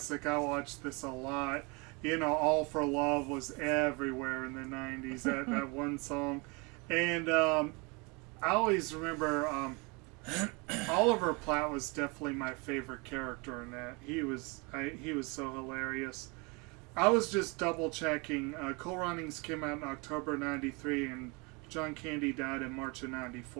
I watched this a lot. All for Love was everywhere in the 90s, that one song. And I always remember Oliver Platt was definitely my favorite character in that. He was so hilarious. I was just double checking. Cool Runnings came out in October '93, and John Candy died in March of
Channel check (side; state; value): left; quieter; 29.1 dB